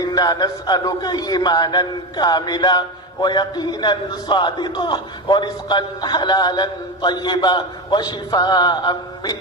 نسألك إيمانا كاملا ويقينا صادقا ورزقا حلالا طيبا وشفاء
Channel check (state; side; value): normal; both; correlation 0.18